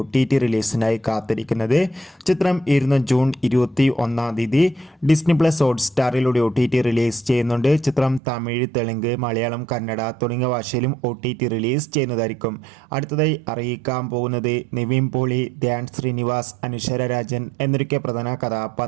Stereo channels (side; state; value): left; drops out; at 8.2 s